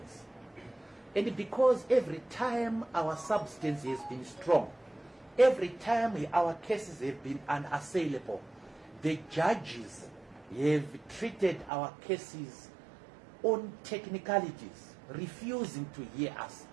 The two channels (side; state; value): left; drops out; at 11.7 s